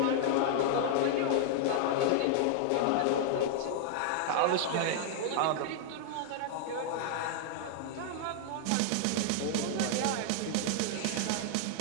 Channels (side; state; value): both; different; correlation -0.01